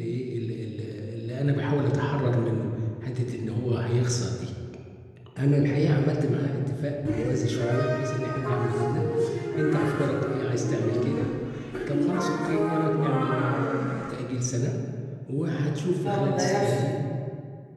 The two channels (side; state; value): both; identical; correlation 1.00